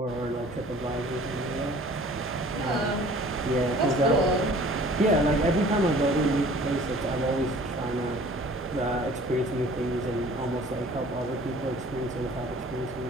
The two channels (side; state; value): both; normal; correlation 0.50